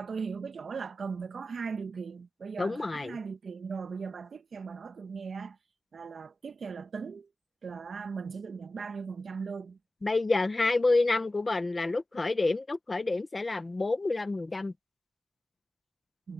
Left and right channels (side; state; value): both; normal; correlation 0.95